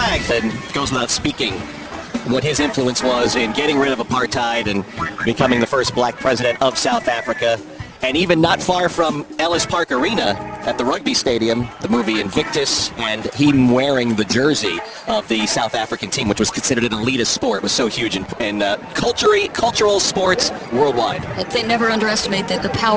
that goes without speaking what his influence was in getting rid of apartheid and becoming the first black president of South Africa. And even not far from Ellis Park Arena at the rugby stadium, the movie Invictus, and him wearing the jersey of the South African team, which was considered an elitist sport, was so huge in cultural sports worldwide. They never underestimate the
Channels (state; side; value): identical; both; correlation 1.00